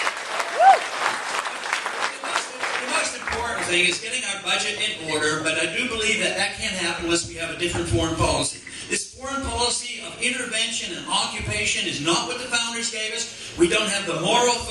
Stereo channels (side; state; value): both; identical; correlation 1.00